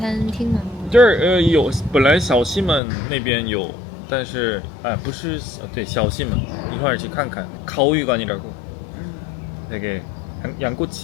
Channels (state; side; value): drops out; right; at 2.8 s